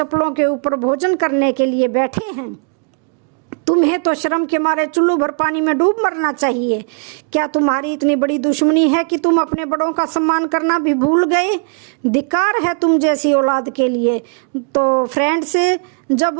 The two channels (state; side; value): quieter; left; 39.1 dB